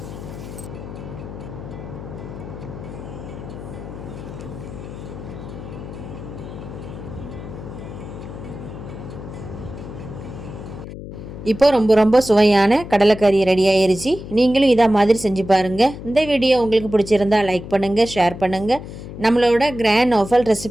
இப்போ ரொம்ப சுவையான கடலைக்கறி ரெடி ஆயிருச்சு. நீங்களும் இதை மாதிரி செஞ்சு பாருங்கள். இந்த வீடியோ உங்களுக்கு பிடிச்சிருந்தா லைக் பண்ணுங்கள், ஷேர் பண்ணுங்கள். நம்மளோட கிராண்ட் நோஃபல்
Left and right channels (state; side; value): noise; left; hum, 11 dB below the sound